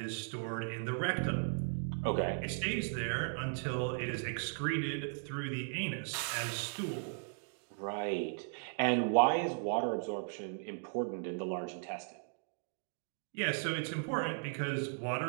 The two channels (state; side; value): silent; left; 53 dB below the other